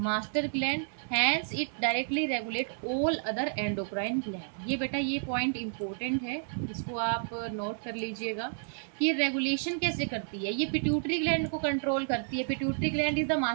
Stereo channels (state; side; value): silent; left; digital silence